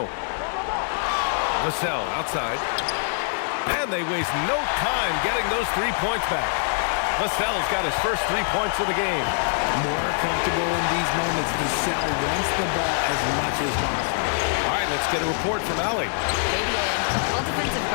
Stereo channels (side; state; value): right; silent; 62 dB below the other